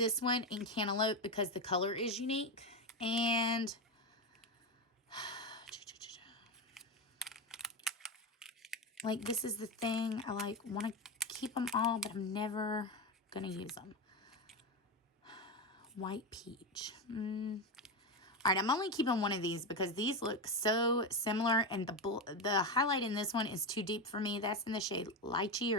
one in Cantaloupe because the color is unique. And like, this is the thing. I like want to keep them all, but I'm never going to use them. White Peach. All right, I'm only keeping one of these because these look so similar, and the highlight in this one is too deep for me. That's in the shade Lychee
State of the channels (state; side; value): normal; both; correlation 0.14